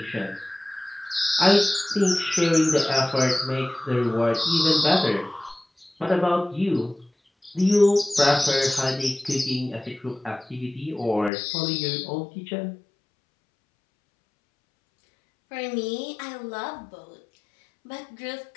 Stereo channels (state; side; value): drops out; right; at 11.3 s